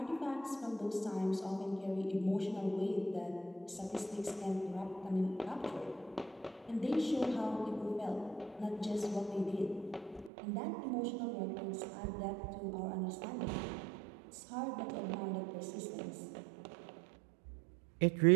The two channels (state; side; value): drops out; left; at 10.3 s